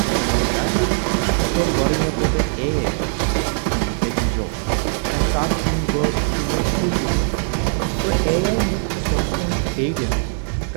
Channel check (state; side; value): silent; left; digital silence